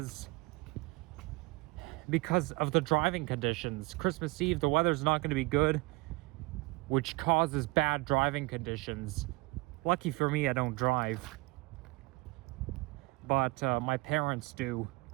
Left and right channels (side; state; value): left; quieter; 24.7 dB